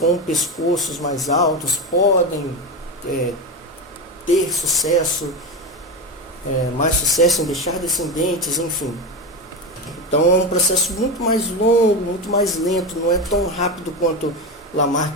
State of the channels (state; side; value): normal; both; correlation 0.17